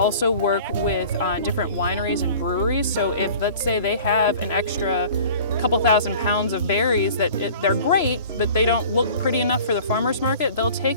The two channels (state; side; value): inverted; both; correlation -0.45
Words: work with different wineries and breweries. So if, let's say, they have an extra couple thousand pounds of berries they're great, but they don't look pretty enough for the farmer's market, they'll